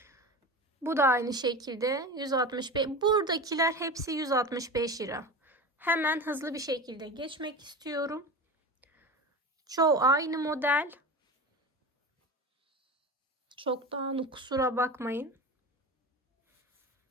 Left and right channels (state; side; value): normal; both; correlation 0.29